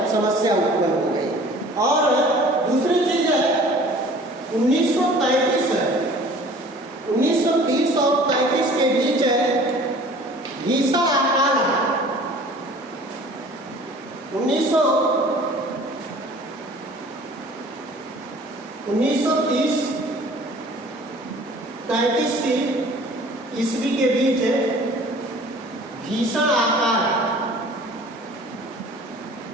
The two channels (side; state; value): both; normal; correlation 0.48